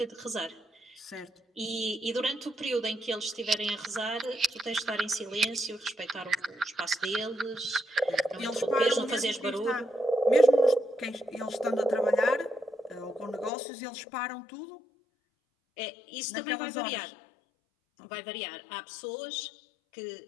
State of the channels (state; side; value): drops out; right; at 13.5 s